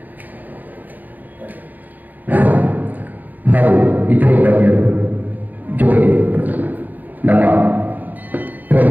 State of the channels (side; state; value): left; late; 0.083 ms